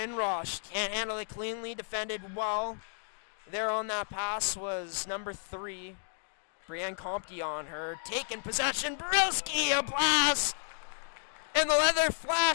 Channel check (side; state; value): right; silent; digital silence